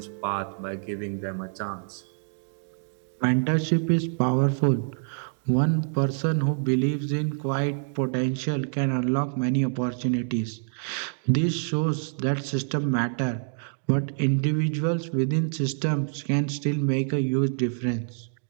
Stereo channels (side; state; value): left; silent; digital silence